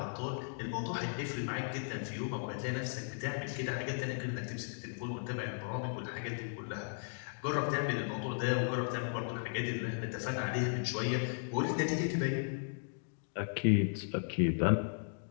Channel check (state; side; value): silent; right; digital silence